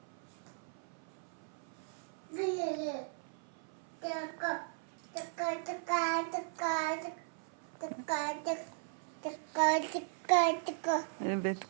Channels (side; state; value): left; silent; 53 dB below the other